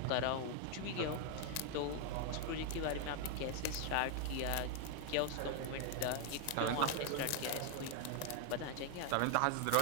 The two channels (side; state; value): both; different; correlation 0.00